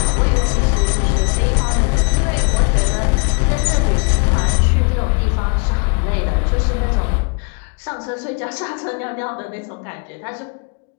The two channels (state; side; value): quieter; right; 34.2 dB